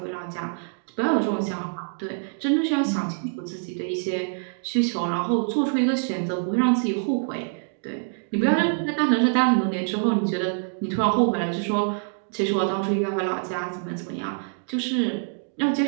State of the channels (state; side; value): silent; left; digital silence